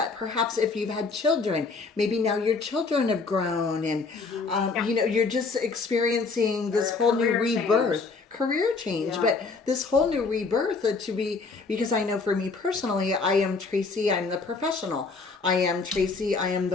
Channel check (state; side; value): quieter; right; 4.2 dB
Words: perhaps if you've had children, maybe now your children have grown and, you know, you're just experiencing this whole new rebirth. Career change, but this whole new rebirth to be, because I know for me personally, I am Tracy, I'm the professional. I am Tracy, I am